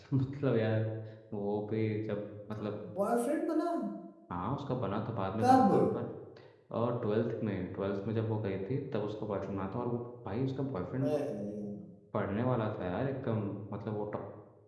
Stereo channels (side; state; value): both; identical; correlation 1.00